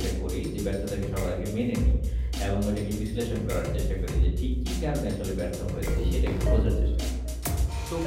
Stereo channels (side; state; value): both; identical; correlation 1.00